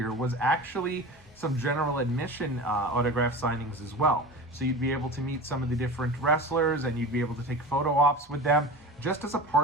was actually some general admission autograph signings as well. So you'd be able to meet some of the different wrestlers and you'd be able to take photo ops with them just as a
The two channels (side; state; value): both; normal; correlation 0.32